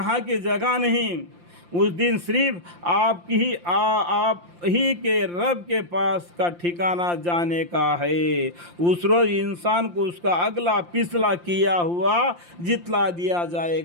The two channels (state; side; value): late; left; 5.8 ms